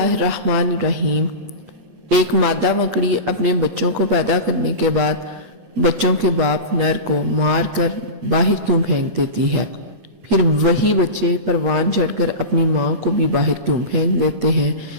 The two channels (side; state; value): left; late; 9.1 ms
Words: एक मादा मकड़ी अपने बच्चों को पैदा करने के बाद बच्चों के बाप नर को मार कर बाहर क्यों फेंक देती है? फिर वही बच्चे परवान चढ़कर अपनी माँ को भी बाहर क्यों फेंक देते हैं?